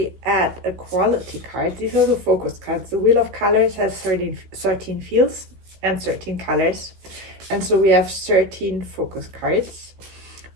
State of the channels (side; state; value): left; late; 16 ms